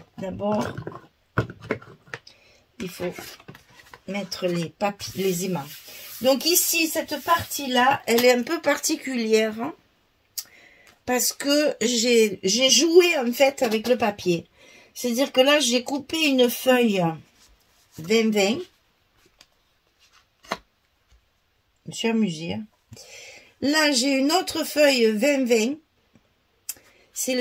D'abord, il faut mettre les aimants. Donc ici, cette partie-là, elle est un peu particulière. Hein. parce que j'ai joué en fait avec le papier. C'est-à-dire que là, j'ai coupé une feuille 20-20. Je me suis amusée. Hein. Là, j'ai une autre feuille 20-20. C'est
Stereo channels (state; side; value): identical; both; correlation 1.00